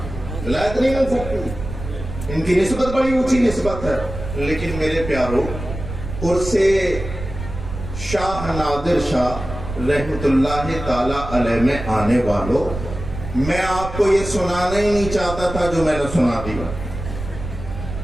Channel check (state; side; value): noise; right; rumble, 9 dB below the sound